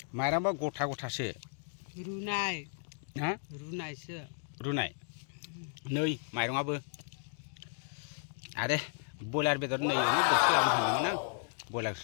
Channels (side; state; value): right; silent; digital silence